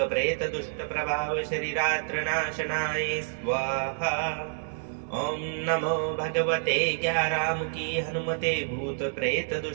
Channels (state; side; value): silent; left; digital silence